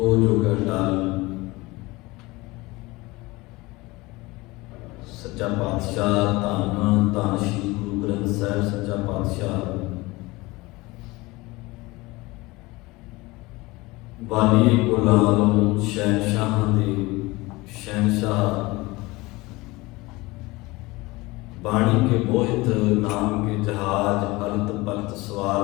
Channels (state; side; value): quieter; right; 22.0 dB